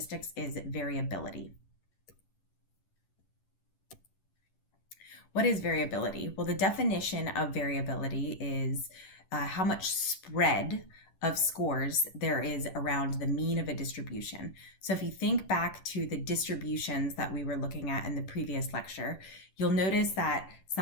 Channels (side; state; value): right; late; 11 ms